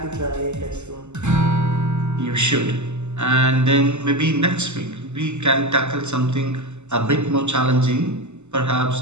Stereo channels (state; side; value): late; left; 0.83 ms